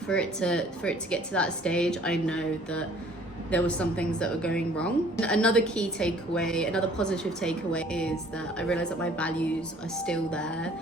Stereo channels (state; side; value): normal; both; correlation 0.55